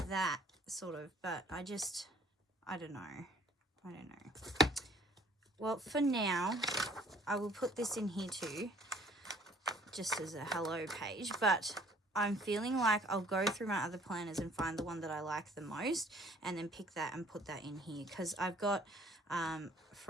that, sort of, but I don't know. I don't know. Well, for now, I will put this in here too, just as a hello page, but I'm feeling like I'll go through my other planners and find the one that I like the most, and then pick that and put that in here, because I've got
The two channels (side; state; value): both; normal; correlation 0.57